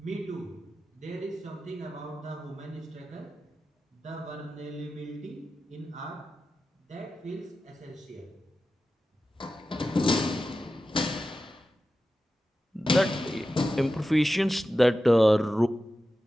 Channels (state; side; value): normal; both; correlation 0.92